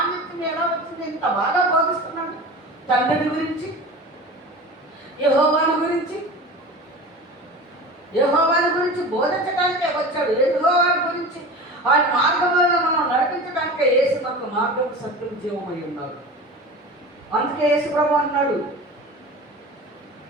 ఎలా వచ్చింది? ఇంత బాగా బోధిస్తున్నాడు తండ్రిని గురించి, యెహోవాను గురించి బోధించడానికే వచ్చాడు. యెహోవాను గురించి ఆయన మార్గంలో మనం నడిపించడానికే యేసు మనకు మార్గం, సత్యం, జీవమై ఉన్నాడు. అందుకే యేసు ప్రభు అన్నాడు,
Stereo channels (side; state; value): both; normal; correlation 0.34